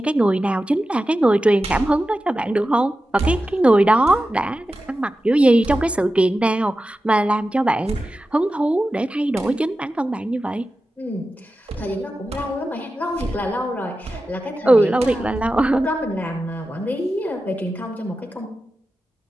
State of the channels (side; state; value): both; normal; correlation 0.93